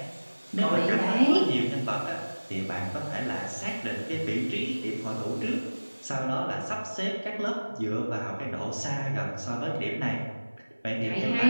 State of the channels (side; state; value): both; inverted; correlation -1.00